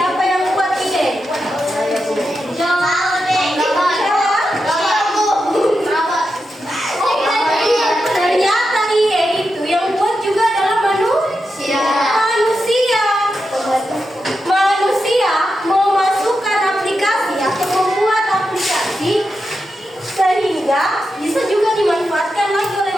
yang buat IA? Ternyata IA itu yang buat juga adalah manusia. Manusia memasukkan aplikasi atau membuat aplikasi sehingga bisa juga dimanfaatkan lagi oleh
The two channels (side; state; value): both; normal; correlation 0.88